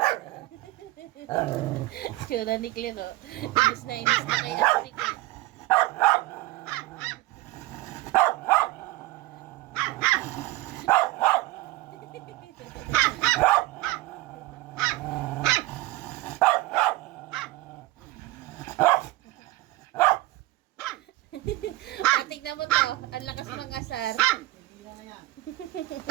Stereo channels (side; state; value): left; quieter; 18.7 dB